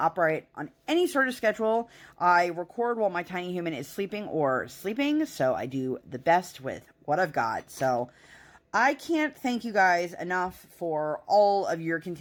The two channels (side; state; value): both; identical; correlation 1.00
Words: operate on any sort of schedule. I record while my tiny human is sleeping or sleeping, so I do the best with what I've got. So I can't thank you guys enough for all of your